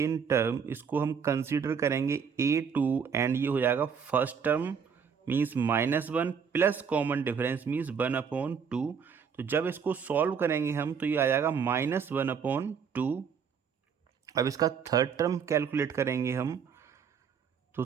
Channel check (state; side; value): quieter; left; 6.7 dB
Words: टर्म इसको हम कंसीडर करेंगे A2 एंड ये हो जाएगा first term means -1 plus common difference means 1/2। तो जब इसको सॉल्व करेंगे हम तो ये आ जाएगा -1/2। अब इसका थर्ड टर्म कैलकुलेट करेंगे हम, तो